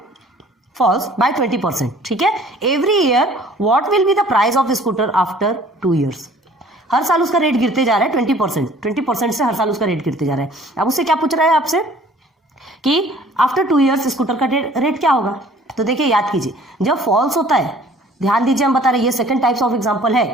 falls by 20%, ठीक है, every year what will be the price of scooter after 2 years. हर साल उसका रेट गिरते जा रहा है 20% से हर साल उसका रेट गिरते जा रहा है। अब उससे क्या पूछ रहा है आपसे कि आफ्टर 2 ईयर्स स्कूटर का रेट क्या होगा। तो देखिए याद कीजिए, जब फॉल्स होता है, ध्यान दीजिए हम बता रहे हैं ये सेकंड टाइप्स ऑफ एग्जांपल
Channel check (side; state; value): both; normal; correlation 0.53